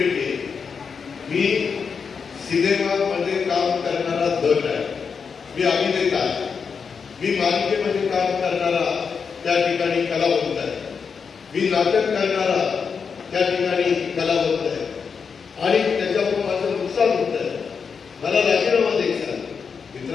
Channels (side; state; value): right; quieter; 5.9 dB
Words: आहे. मी सिनेमामध्ये काम करणारा दट आहे. मी अभिनेता आहे. मी मालिकेमध्ये काम करणारा त्या ठिकाणी कलावंत आहे. मी नाटक करणारा त्या ठिकाणी कलावंत आहे. आणि त्याच्यामुळे माझं नुकसान होत आहे. मला राजीनामा द्यायचा.